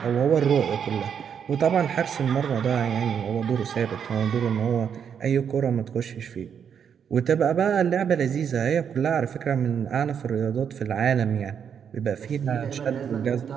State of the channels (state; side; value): quieter; left; 7.7 dB